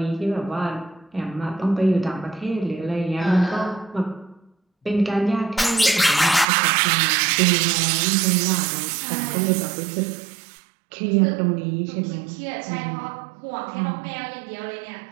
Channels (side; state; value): left; drops out; at 6.5 s